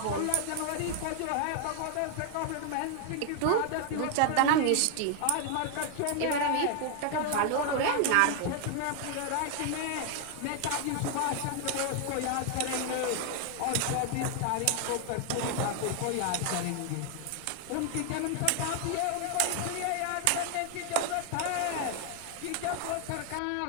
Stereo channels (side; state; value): both; different; correlation 0.00